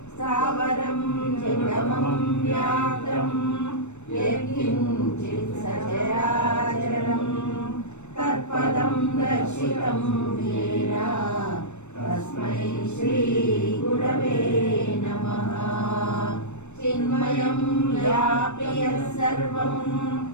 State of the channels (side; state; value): right; late; 0.83 ms